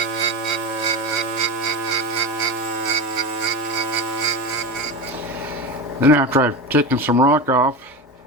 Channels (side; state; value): both; normal; correlation 0.22